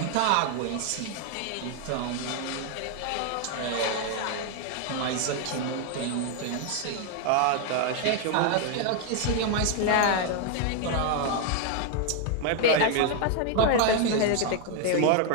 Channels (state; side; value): different; both; correlation 0.01